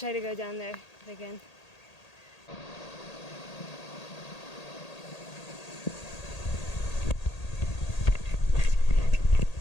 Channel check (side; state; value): right; late; 1.8 ms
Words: to go down there if I can.